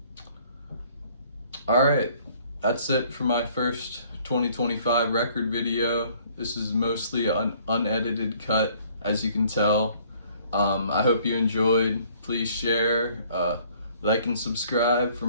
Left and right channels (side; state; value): both; inverted; correlation -0.59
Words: All right, that's it for my first 2025 record video. This is mostly an unedited cut, as you can tell. I hope you enjoyed. Please share, like and subscribe for